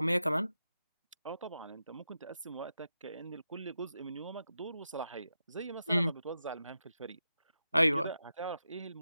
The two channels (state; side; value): inverted; both; correlation -0.89